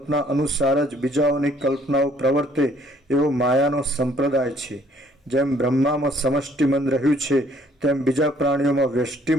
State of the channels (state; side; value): normal; both; correlation 0.62